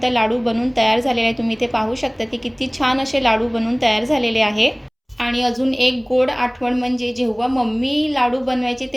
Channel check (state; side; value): identical; both; correlation 1.00